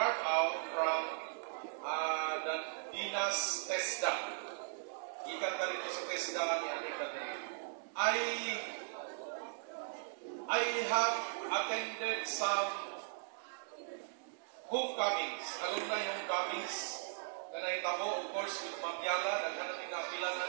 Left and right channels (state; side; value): silent; left; digital silence